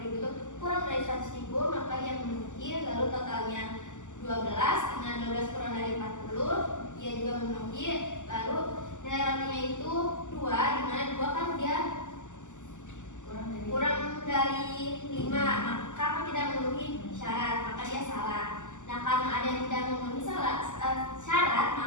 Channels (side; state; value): right; late; 0.86 ms